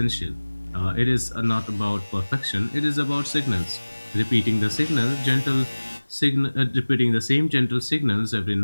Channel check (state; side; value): inverted; both; correlation -1.00